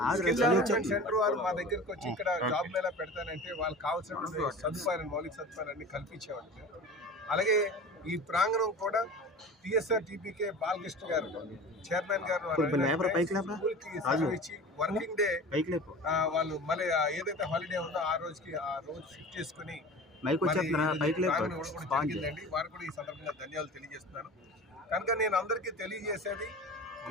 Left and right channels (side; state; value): both; normal; correlation 0.36